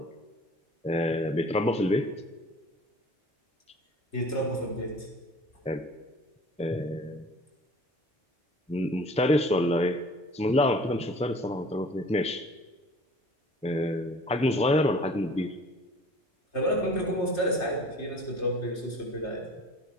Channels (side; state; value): both; normal; correlation 0.48